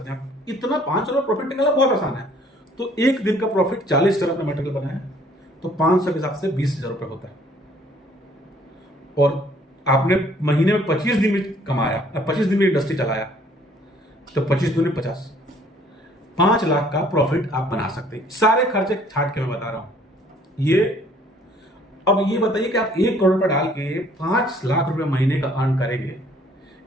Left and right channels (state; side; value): normal; both; correlation 0.59